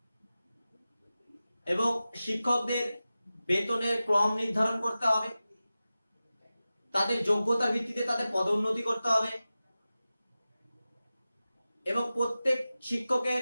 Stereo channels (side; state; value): both; inverted; correlation -0.95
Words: এবং শিক্ষকদের বেতনের ক্রম নির্ধারণ করতে হবে, তাদের যোগ্যতার ভিত্তিতে তাদের পদোন্নতি করতে হবে এবং প্রত্যেক শিক্ষকের